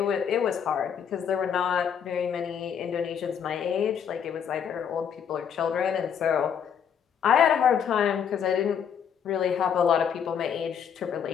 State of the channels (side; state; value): right; quieter; 7.9 dB